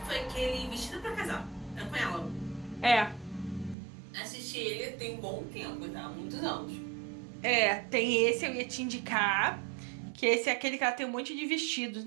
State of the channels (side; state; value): left; drops out; at 3.8 s